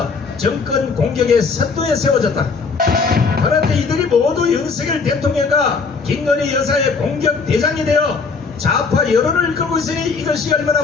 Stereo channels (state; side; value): quieter; right; 4.8 dB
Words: 정권 공격의 선두에 세워졌다. 그런데 이들이 모두 윤석열 대통령과 김건희 여사의 공격 대장이 되어 좌파 여론을 이끌고 있으니 이것이 얼마나